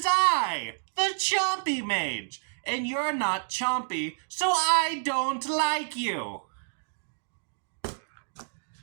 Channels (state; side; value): silent; left; digital silence